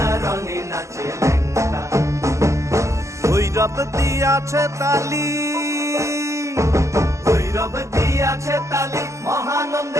রঙে নাচে লেঙ্গা। ভৈরব দিয়াছে তালি, ভৈরব দিয়াছে তালি,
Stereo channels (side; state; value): left; late; 0.14 ms